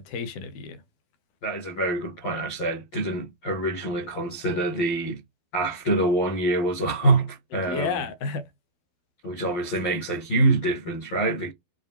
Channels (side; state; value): right; late; 12 ms